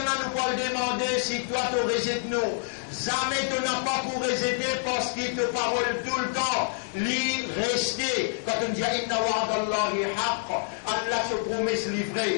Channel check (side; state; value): right; silent; digital silence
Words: peut le demander si toi tu rejettes nous. Jamais tu n'as pas pour rejeter parce qu'il te parole tout le temps. L'y rester. Quand on dit inna wa'adallahi haqq, Allah se promet se